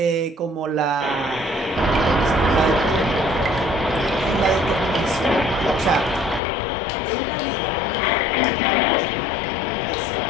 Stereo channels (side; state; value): right; drops out; at 6.4 s